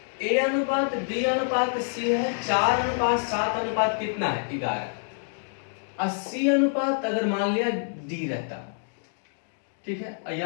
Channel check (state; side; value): silent; right; digital silence